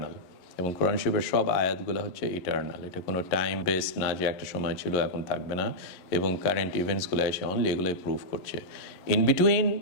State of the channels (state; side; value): late; right; 11 ms